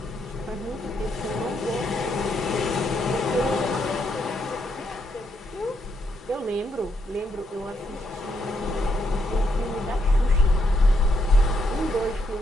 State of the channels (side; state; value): both; normal; correlation 0.77